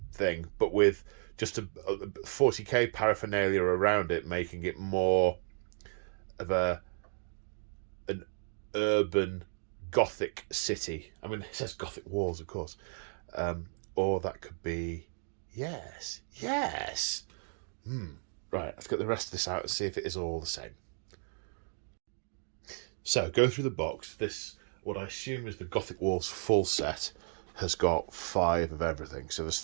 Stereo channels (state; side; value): silent; left; 55 dB below the other